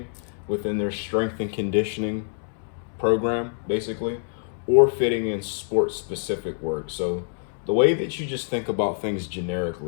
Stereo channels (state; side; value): silent; right; 61 dB below the other